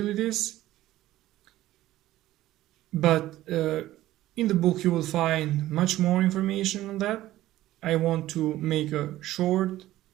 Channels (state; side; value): quieter; left; 15.1 dB